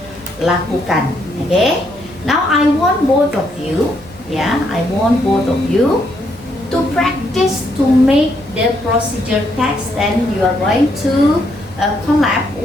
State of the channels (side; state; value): right; noise; hum, 24 dB below the sound